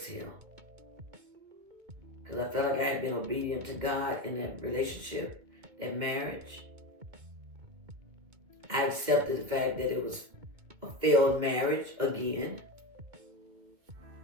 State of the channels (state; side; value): late; left; 2.4 ms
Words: Because I felt like I had been obedient to God in that relationship, that marriage. I accepted the fact that it was a failed marriage again.